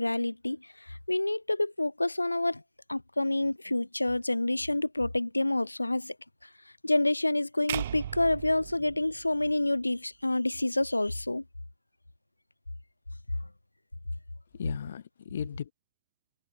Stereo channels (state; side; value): inverted; both; correlation -0.98